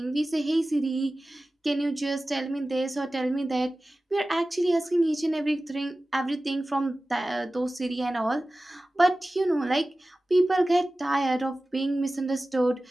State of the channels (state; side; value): normal; both; correlation 0.96